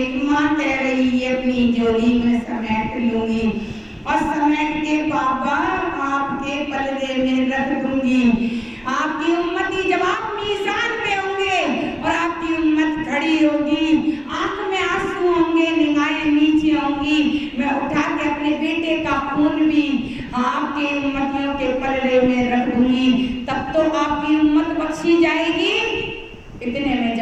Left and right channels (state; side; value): identical; both; correlation 1.00